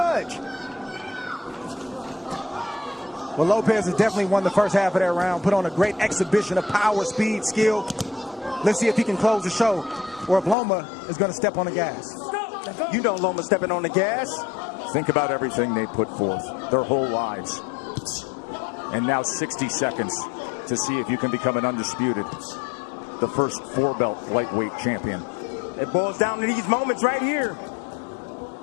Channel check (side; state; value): right; drops out; at 10.6 s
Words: Well, Lopez has definitely won the first half of that round, put on a great exhibition of power, speed, skill. Let's see if he can close the show, or if Loma is going to step on the gas. You know Loma stepping on the gas. Think about everything they put forth, their whole lives. And now 60 seconds to see if you can become an undisputed, the first 4-belt lightweight champion. It boils down to these moments right here.